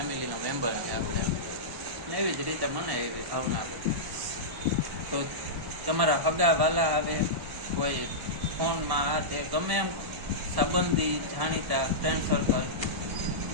મેમ્બર છે આપણે, ને એવી જ રીતે મને એવી ભાવના આવે. તો તમારા હગા વાલા આવે, કોઈ ફોનમાં આ તે ગમે એમ સંબંધી જાણીતા ફ્રેન્ડ સર્કલ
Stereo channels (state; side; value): late; left; 1.1 ms